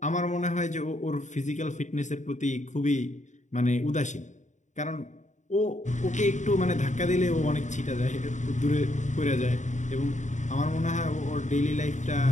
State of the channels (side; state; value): right; late; 0.35 ms